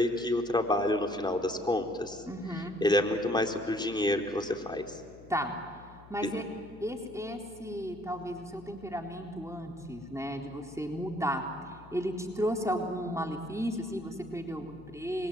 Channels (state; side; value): noise; left; hum, 20 dB below the sound